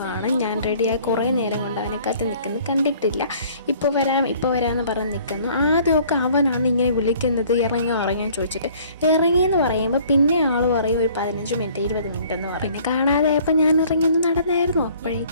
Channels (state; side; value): inverted; both; correlation -0.55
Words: ഞാൻ റെഡിയായി കുറേ നേരം കൊണ്ട് അവനെ കാത്ത് നിൽക്കുന്നു, കണ്ടിട്ടില്ല. ഇപ്പോൾ വരാമെന്ന് പറഞ്ഞ് നിൽക്കുന്നു. ആദ്യമൊക്കെ അവനാണ് ഇങ്ങനെ വിളിക്കുന്നത്, ഇറങ്ങാൻ ചോദിച്ചിട്ട്. ഇറങ്ങിയെന്ന് പറയുമ്പോൾ പിന്നെ ആൾ പറയും ഒരു 15 മിനിറ്റ് 20 മിനിറ്റ് എന്ന് പറയും. പിന്നെ കാണാതായപ്പോൾ ഞാൻ ഇറങ്ങിയൊന്ന് നടന്നായിരുന്നു.